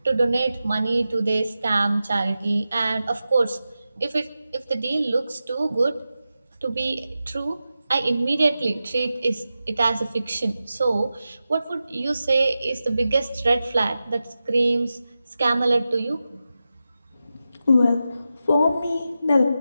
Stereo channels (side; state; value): both; inverted; correlation -0.92